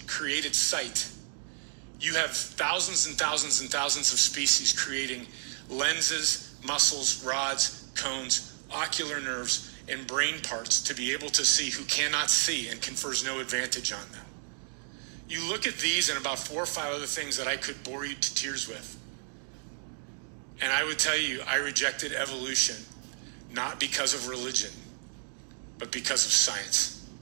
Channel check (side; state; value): left; silent; digital silence